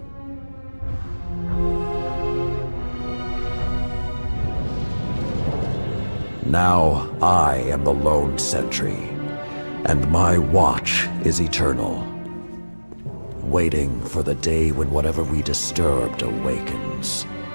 Now I am the lone sentry, and my watch is eternal, waiting for the day when whatever we disturbed awakens.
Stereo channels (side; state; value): both; inverted; correlation -1.00